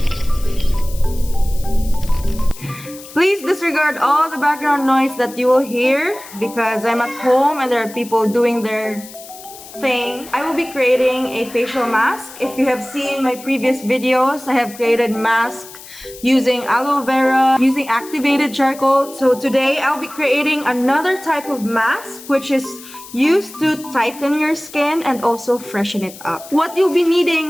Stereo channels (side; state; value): left; noise; hiss, 17 dB below the sound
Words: Please disregard all the background noise that you will hear because I'm at home and there are people doing their thing. I will be creating a facial mask. If you have seen my previous videos, I have created mask using aloe vera, using activated charcoal. So today I'll be creating another type of mask which is used to tighten your skin and also freshen it up. What you'll be